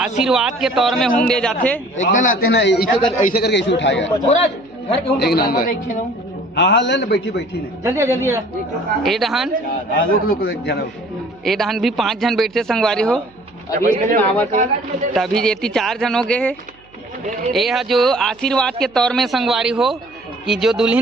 के तौर में हुम दे जाते एकदम आते ना ऐसे करके ऐसे उठाएगा एक नंबर हाँ ले ले बैठी बैठी ने जल्दी जल्दी ए डहान भी 5 जन बैठते संगवारी हो तभी जेती 4 जन हो गए है ये जो आशीर्वाद के तौर में संगवारी हो कि जो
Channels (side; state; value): right; noise; hum, 30 dB below the sound